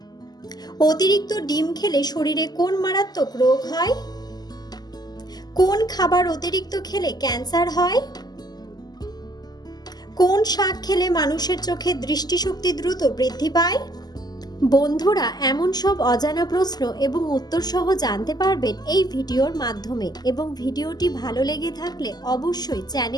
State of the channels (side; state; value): right; late; 0.20 ms